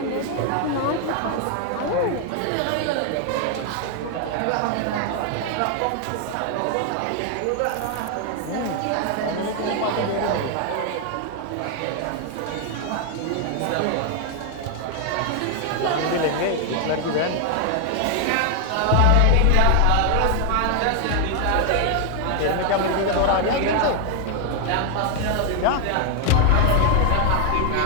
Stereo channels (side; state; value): both; different; correlation 0.00